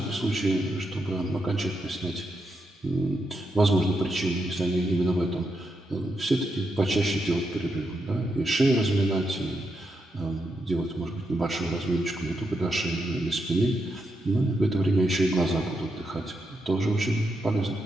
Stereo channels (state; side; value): normal; both; correlation 0.83